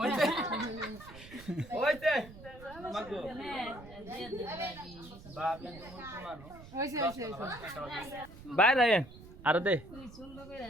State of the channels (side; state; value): right; noise; rumble, 17 dB below the sound